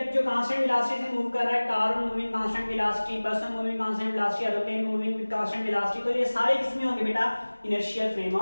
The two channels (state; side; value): inverted; both; correlation -1.00